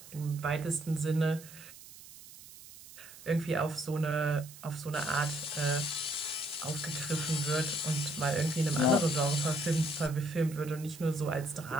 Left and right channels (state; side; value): noise; right; hiss, 18 dB below the sound